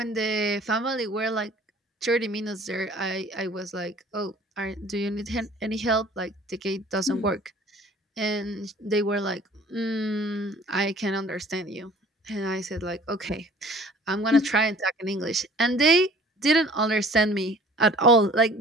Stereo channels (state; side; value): normal; both; correlation 0.50